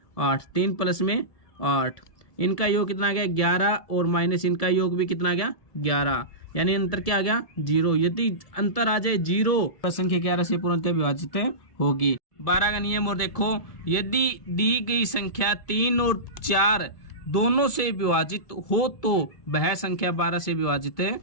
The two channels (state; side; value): late; right; 1.7 ms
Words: 8, 3 प्लस में 8, इनका योग कितना आ गया 11 और माइनस इनका योग भी कितना आ गया 11, यानी अंतर क्या आ गया 0। यदि अंतर आ जाए 0 तो संख्या 11 से पूर्णतः विभाजित होगी। 12 का नियम और देखो, यदि दी गई संख्या 3 और 4 दोनों से विभाजित हो तो वह संख्या 12 से विभाजित